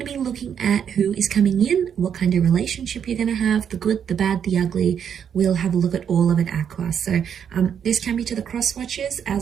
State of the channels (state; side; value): quieter; left; 8.1 dB